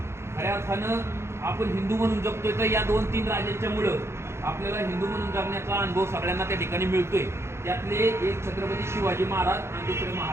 खऱ्या अर्थानं आपण हिंदू म्हणून जगतोय तर या 2-3 राजांच्यामुळं आपल्याला हिंदू म्हणून जगण्याचा अनुभव सगळ्यांना त्या ठिकाणी मिळतोय. त्यातले एक छत्रपती शिवाजी महाराज आणि दुसरे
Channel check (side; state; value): left; late; 0.13 ms